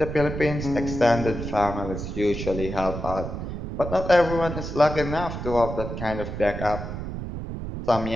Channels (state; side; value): noise; right; rumble, 6 dB below the sound